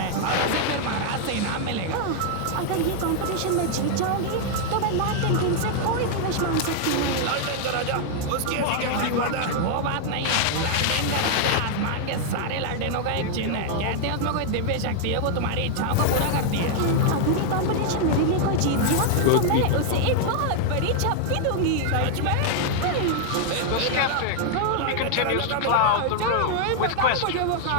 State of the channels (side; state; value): both; different; correlation 0.00